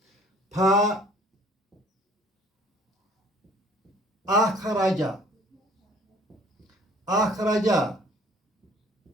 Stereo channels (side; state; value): both; normal; correlation 0.54